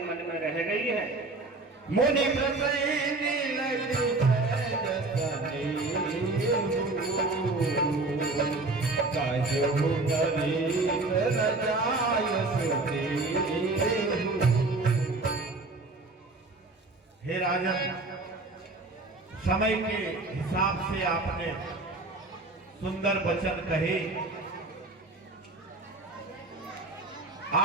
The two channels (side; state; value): left; quieter; 3.3 dB